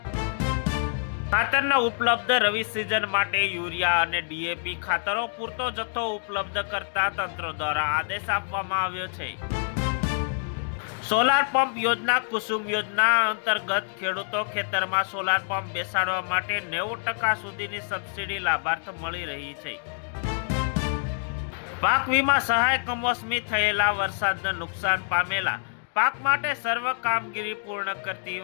ખાતરના ઉપલબ્ધ રવિ સિઝન માટે યુરિયા અને ડીએપી ખાતરો પૂરતો જથ્થો ઉપલબ્ધ કરતા તંત્ર દ્વારા આદેશ આપવામાં આવ્યો છે। સોલાર પંપ યોજના કુસુમ યોજના અંતર્ગત ખેડૂતો ખેતરમાં સોલાર પંપ બેસાડવા માટે 90% સુધીની સબસિડી લાભાર્થ મળી રહી છે। પાક વીમા સહાય કમોસમી થયેલા વરસાદને નુકસાન પામેલા પાક માટે સર્વ કામગીરી પૂર્ણ કરતી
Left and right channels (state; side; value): silent; right; digital silence